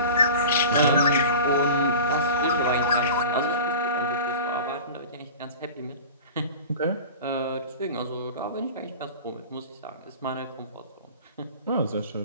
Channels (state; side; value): inverted; both; correlation -0.35